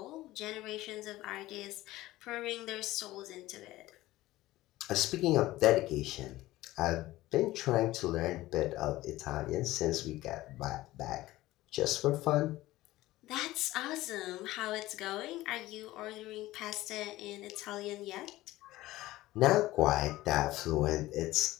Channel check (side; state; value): right; quieter; 17.0 dB